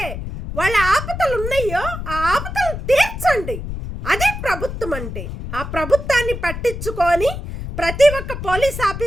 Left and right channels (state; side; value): noise; left; rumble, 7 dB below the sound